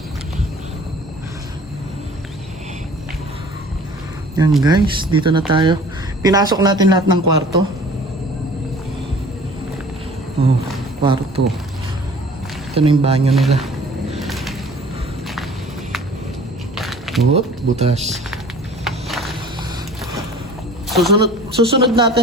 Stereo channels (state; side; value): normal; both; correlation 0.48